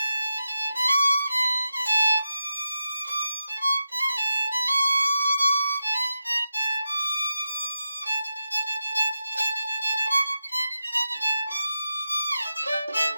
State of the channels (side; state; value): both; inverted; correlation -0.90